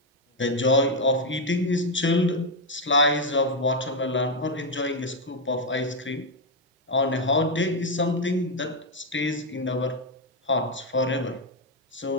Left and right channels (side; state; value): both; normal; correlation 0.04